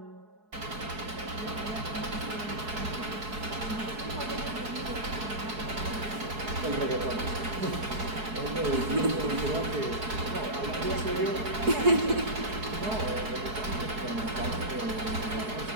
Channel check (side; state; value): left; late; 4.7 ms